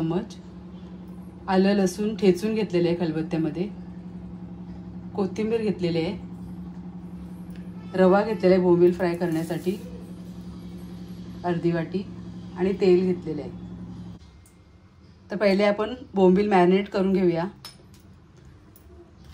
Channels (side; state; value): both; identical; correlation 1.00